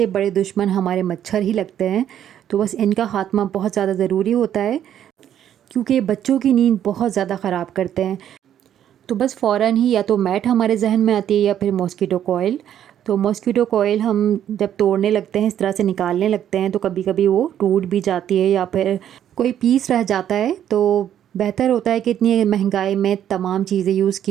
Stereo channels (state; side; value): quieter; left; 10.3 dB